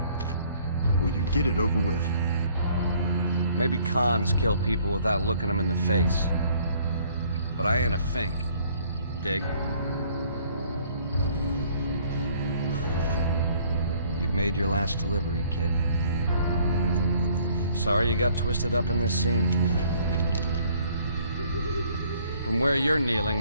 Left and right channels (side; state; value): both; inverted; correlation -0.60